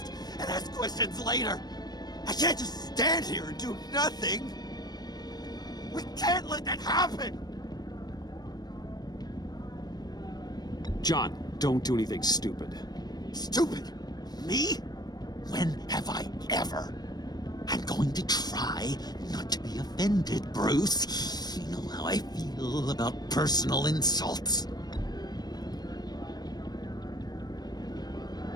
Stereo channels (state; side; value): late; right; 0.19 ms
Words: and ask questions later! I can't just stand here and do nothing! We can't let that happen! John, don't do anything stupid. Stupid? Me? When have I ever? I'm going to try not to be offended, Bruce. You know how I feel about personal insults.